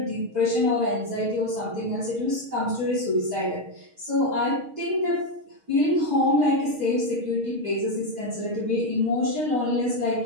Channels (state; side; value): late; left; 6.5 ms